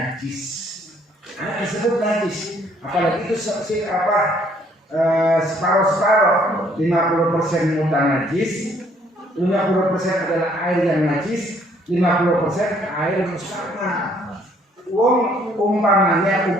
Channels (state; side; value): normal; both; correlation 0.64